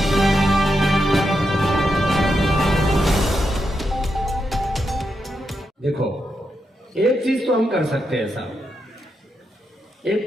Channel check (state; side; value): normal; both; correlation 0.84